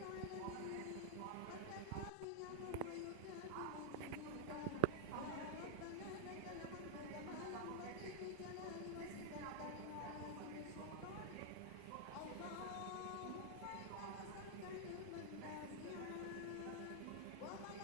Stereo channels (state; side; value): different; both; correlation -0.01